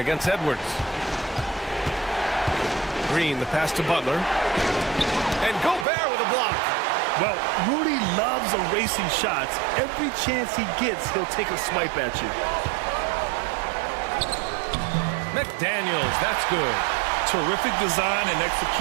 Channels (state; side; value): drops out; left; at 5.9 s